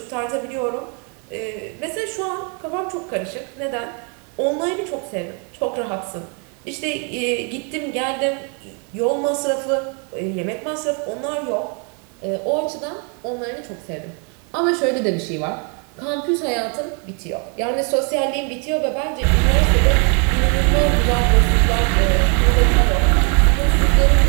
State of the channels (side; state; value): left; quieter; 37.0 dB